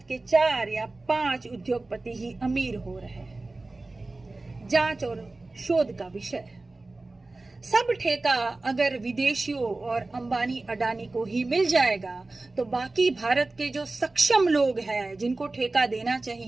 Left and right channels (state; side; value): quieter; left; 3.2 dB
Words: के 4 या 5 उद्योगपति ही अमीर हो रहे हैं। जांच और शोध का विषय है। सब ठेका अगर विदेशियों और अंबानी अडानी को ही मिल जाएगा, तो बाकी भारत के जो सक्षम लोग हैं जिनको ठेका देना